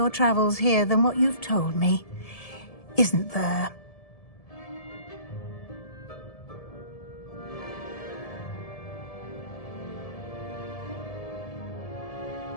travels here than what you've told me. Isn't there?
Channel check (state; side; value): late; right; 1.7 ms